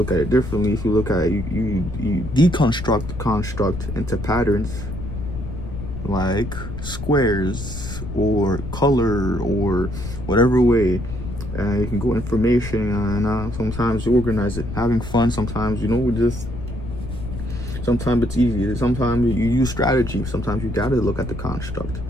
at it differently, if you look at it, you deconstruct the construct into patterns, like squares or color or whatever way. And you can go information, and sometimes you organize it, having fun. Sometimes, you know, sometimes it's easy. Sometimes you use strategy. Sometimes you gotta look at the construct.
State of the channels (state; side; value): noise; left; rumble, 8 dB below the sound